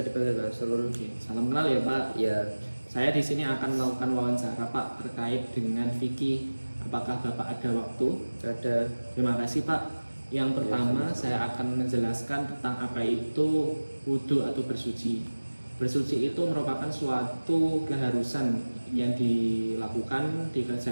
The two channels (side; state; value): both; inverted; correlation -1.00